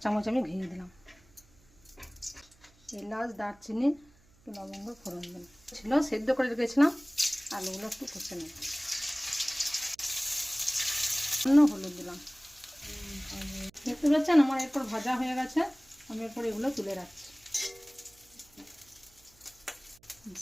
চামচ আমি ঘি দিলাম, এলাচ দারচিনি একটু লবঙ্গ ফোড়ন দিলাম। ছিল সেদ্ধ করে রেখেছিলাম, আলুগুলো একটু কষে নেব। হলুদ দিলাম। দেখতে পাচ্ছেন আমার এরপর ভাজা হয়ে গেছে, আমি এরপর এগুলো তুলে রাখছি।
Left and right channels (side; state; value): right; noise; hum, 29 dB below the sound